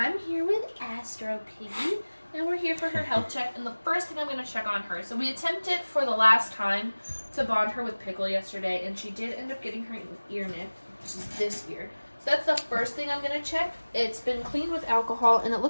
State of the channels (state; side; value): inverted; both; correlation -1.00